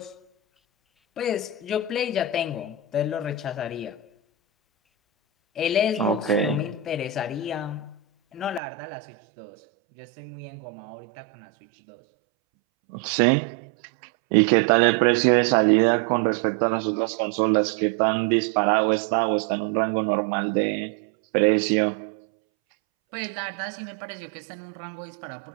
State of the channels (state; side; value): drops out; left; at 8.6 s